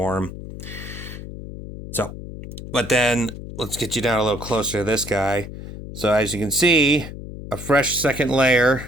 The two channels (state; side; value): noise; left; hum, 11 dB below the sound